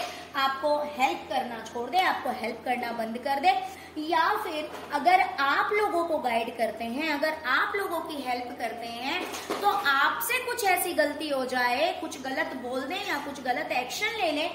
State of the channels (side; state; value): both; identical; correlation 1.00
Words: आपको हेल्प करना छोड़ दे, आपको हेल्प करना बंद कर दे। या फिर अगर आप लोगों को गाइड करते हैं, अगर आप लोगों की हेल्प करते हैं, तो आपसे कुछ ऐसी गलती हो जाए, कुछ गलत बोल दें या कुछ गलत एक्शन ले लें